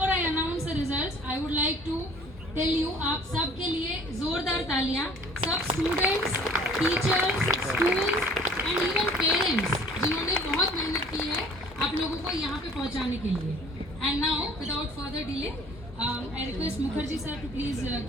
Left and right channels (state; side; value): normal; both; correlation 0.52